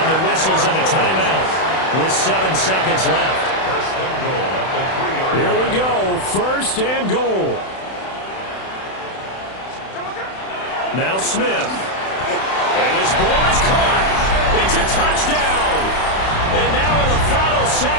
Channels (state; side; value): late; right; 31 ms